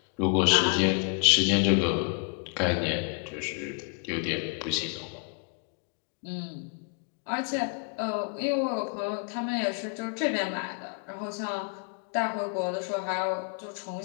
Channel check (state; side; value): quieter; right; 39.3 dB